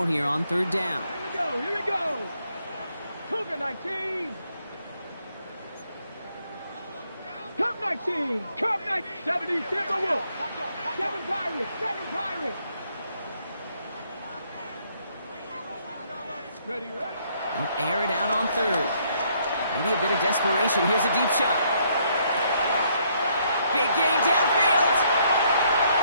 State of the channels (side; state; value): both; inverted; correlation -0.70